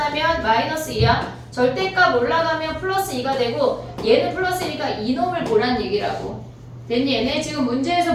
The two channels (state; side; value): identical; both; correlation 1.00